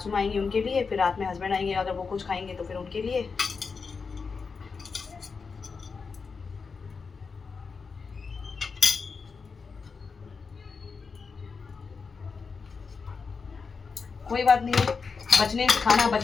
माँ आएंगी उनके लिए, फिर रात में हस्बैंड आएंगे, अगर वो कुछ खाएंगे तो फिर उनके लिए। कोई बात नहीं है, खाना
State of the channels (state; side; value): quieter; right; 5.1 dB